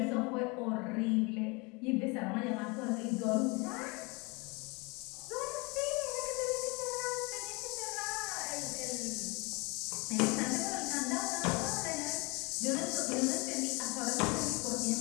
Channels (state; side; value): quieter; right; 28.3 dB